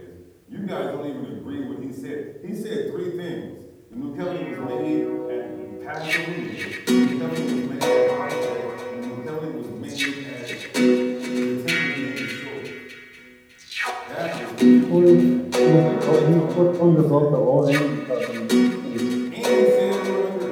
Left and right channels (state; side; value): identical; both; correlation 1.00